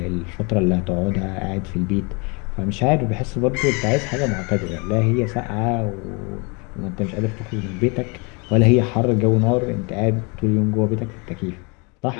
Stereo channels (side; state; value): right; quieter; 31.1 dB